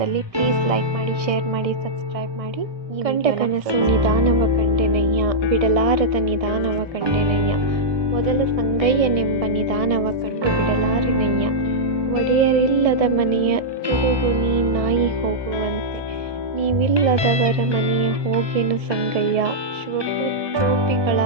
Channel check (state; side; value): late; left; 1.6 ms